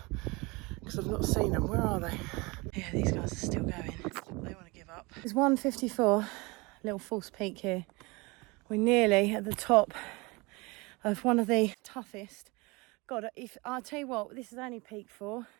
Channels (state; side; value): quieter; left; 25.7 dB